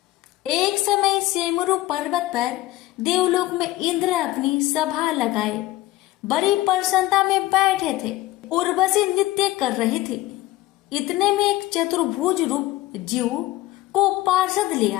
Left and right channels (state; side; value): quieter; right; 16.9 dB